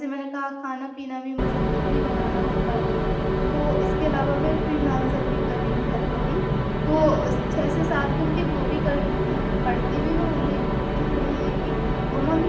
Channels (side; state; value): both; identical; correlation 1.00